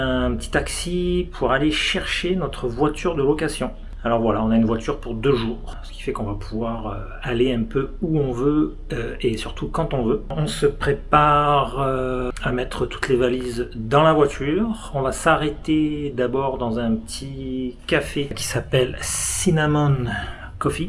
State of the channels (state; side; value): identical; both; correlation 1.00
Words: petit taxi pour aller chercher notre voiture de location. Alors voilà, on a une voiture pour 2 jours, ce qui fait qu'on va pouvoir aller un peu où on veut et surtout quand on veut. On se prépare à mettre toutes les valises dans la voiture. On va s'arrêter d'abord dans un petit café qui s'appelle Cinnamon